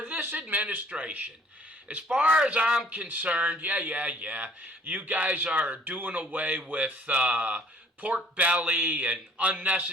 this administration. As far as I'm concerned, you guys are doing away with pork belly and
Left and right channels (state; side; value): normal; both; correlation 0.57